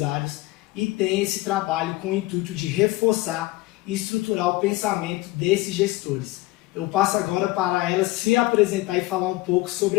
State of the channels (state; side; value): quieter; right; 19.4 dB